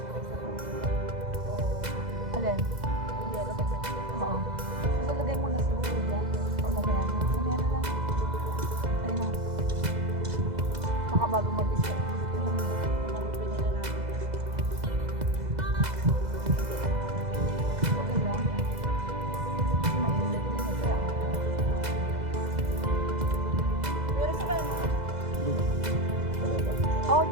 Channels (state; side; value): late; left; 2.0 ms